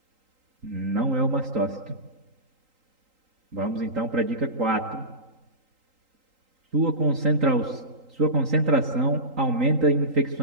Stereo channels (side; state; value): left; late; 3.8 ms